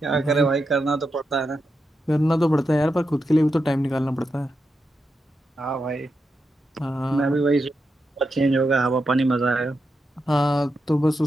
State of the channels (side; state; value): both; normal; correlation 0.86